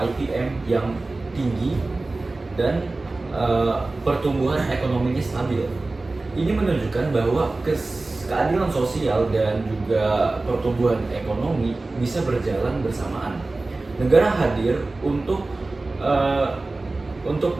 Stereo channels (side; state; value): left; quieter; 3.2 dB